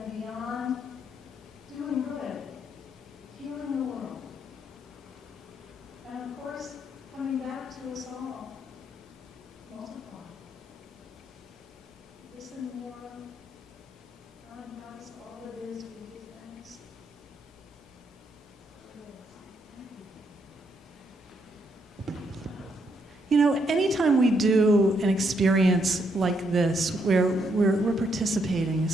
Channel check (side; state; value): both; normal; correlation 0.75